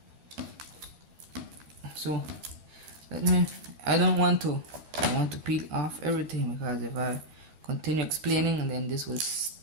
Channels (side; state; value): left; late; 12 ms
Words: So I want to peel off everything, because if I continue explaining, and then this will